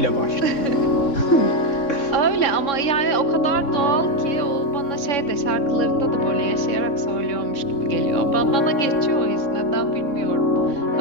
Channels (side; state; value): right; late; 3.6 ms